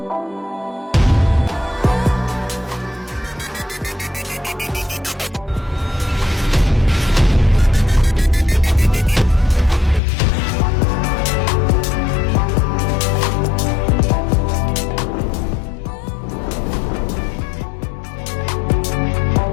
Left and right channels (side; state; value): right; drops out; at 10.0 s